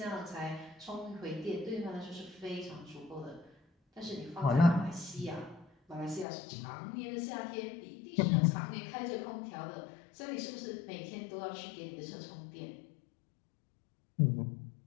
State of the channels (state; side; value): drops out; right; at 6.2 s